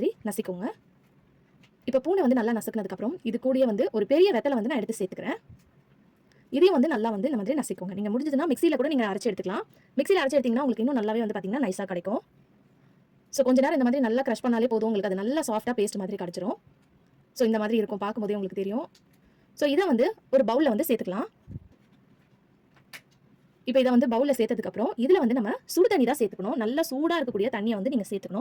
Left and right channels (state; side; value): identical; both; correlation 1.00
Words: நசிக்கோங்க. இப்போ பூண்டை வந்து நல்லா நசுக்கினதுக்கு அப்புறம் இது கூடயே வந்து ஒரு பெரிய வெத்தலை வந்து நான் எடுத்து சேர்த்துக்கிறேன். இதையும் வந்து நல்லா வந்து இந்த மாதிரி நசிக்கோங்க. நீங்க முடிஞ்சதுன்னா மிக்ஸியில கூட நீங்க அரைச்சு எடுத்துக்கலாம். மிக்ஸியில அரைச்சு எடுத்தீங்கன்னா உங்களுக்கு இன்னும் நல்லாவே வந்து பாத்தீங்கன்னா நைஸா கிடைக்கும். ஸோ கொஞ்ச நேரம் இந்த மாதிரி நல்லா க்ரஷ் பண்ணாலே போதும், உங்களுக்கு அது நல்லா சாஃப்டாக பேஸ்ட் மாதிரி கிடச்சிரும். ஸோ இந்த மாதிரி இருக்கும், பார்க்கும்போதே உங்களுக்கு தெரியும். ஸோ இதை வந்து ஒரு பவுலில் வந்து சேர்த்துக்கலாம். இப்போ இதை வந்து பவுலில் சேர்த்ததுக்கப்புறம் இதில் வந்து நம்ம சுடு தண்ணி தான் சேர்த்துக்கணும். நல்லா சூடாக இருக்கக்கூடிய தண்ணியை வந்து நீங்கள்